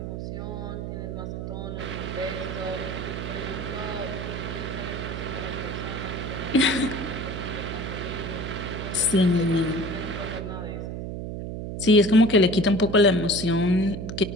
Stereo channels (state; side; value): noise; right; hum, 6 dB below the sound